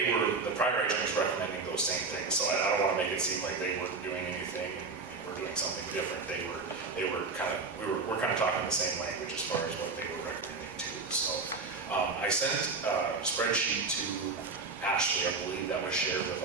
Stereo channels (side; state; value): left; quieter; 4.2 dB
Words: the prior agent was recommending those same things. So I don't want to make it seem like they weren't doing anything and we're doing something different. We're kind of talking the same language as far as what they were recommending too. So I sent a spreadsheet to Ashley, I believe that was shared with